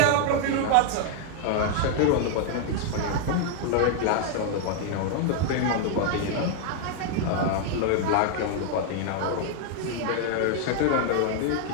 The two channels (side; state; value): both; different; correlation 0.00